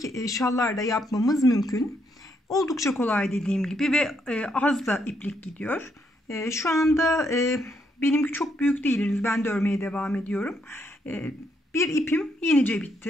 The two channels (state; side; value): normal; both; correlation 0.75